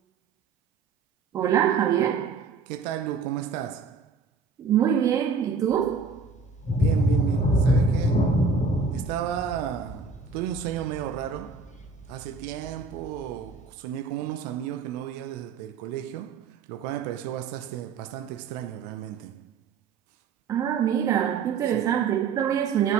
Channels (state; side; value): quieter; left; 4.9 dB